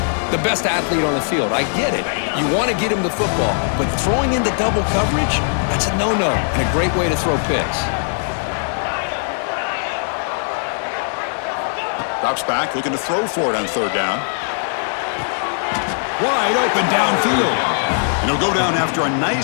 the best athlete on the field. I get it. You want to get him the football, but throwing into double coverage, that's a no-no and a great way to throw picks. Drops back, looking to throw for it on 3rd down. Wide open downfield. And he'll go down after a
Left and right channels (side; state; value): right; silent; digital silence